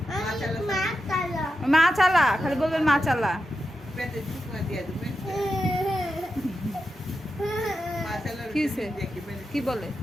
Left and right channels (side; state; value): both; normal; correlation 0.88